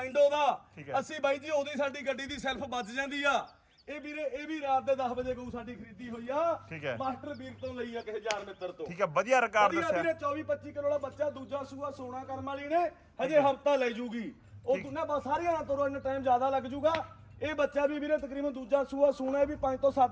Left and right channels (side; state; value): both; identical; correlation 1.00